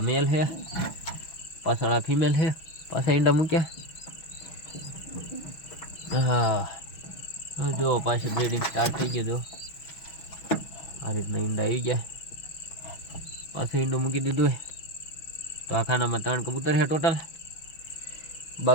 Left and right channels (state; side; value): late; right; 6.1 ms